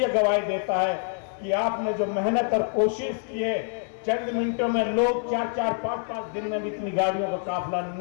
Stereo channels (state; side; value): silent; right; 61 dB below the other